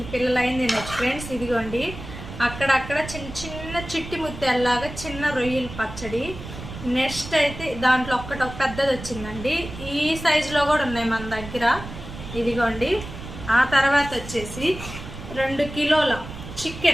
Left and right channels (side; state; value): right; noise; rumble, 11 dB below the sound